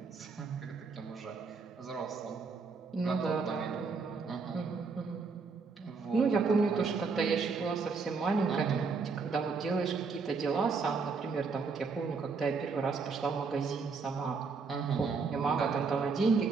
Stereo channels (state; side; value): quieter; left; 4.8 dB